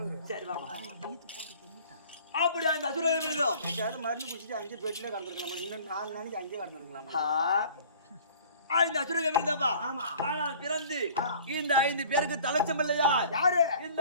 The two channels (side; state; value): both; inverted; correlation -0.49